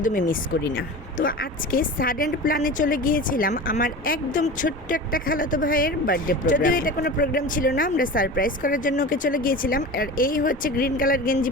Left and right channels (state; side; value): normal; both; correlation 0.32